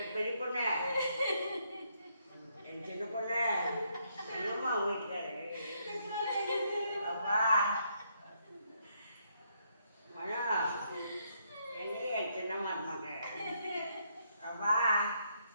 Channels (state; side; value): inverted; both; correlation -0.74